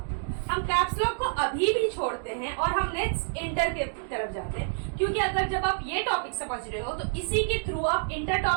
हम कैप्स लॉक को अभी भी छोड़ते हैं और हम नेक्स्ट इंटर के तरफ जाते हैं, क्योंकि अगर जब आप ये टॉपिक समझ रहे हो तो इसी के थ्रू आप इंटर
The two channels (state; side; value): silent; left; digital silence